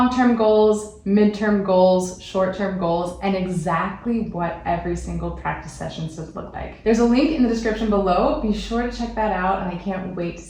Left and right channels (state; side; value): identical; both; correlation 1.00